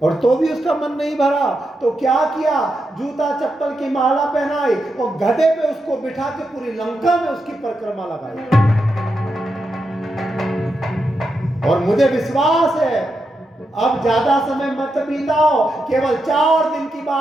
और तो भी उसका मन नहीं भरा, तो क्या किया? जूता चप्पल की माला पहनाई और गधे पे उसको बिठा के पूरी लंका में उसकी परिक्रमा लगाई। और मुझे विश्वास है अब ज्यादा समय मत बिताओ, केवल 4 दिन की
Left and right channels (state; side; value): normal; both; correlation 0.85